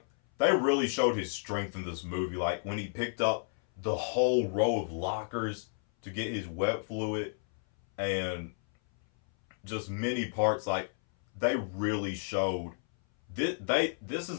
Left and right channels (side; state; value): right; silent; 57 dB below the other